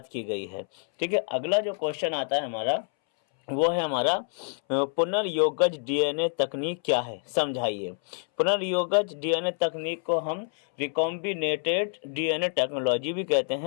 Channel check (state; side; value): silent; right; 60 dB below the other